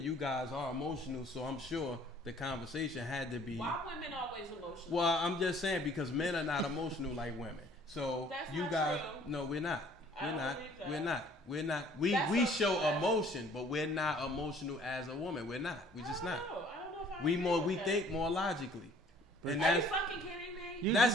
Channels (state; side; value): normal; both; correlation 0.56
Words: you guys are emotional, so I'm sure the conversation had to be. Why women always emotional? Well, I'm just saying because men are not emotional like women. So that's you not true. No, we're not. We're not. We show emotion, but we're not emotional as a woman. We're not. We're just not. I don't know if we think more logically. And are that's you fucking kidding me?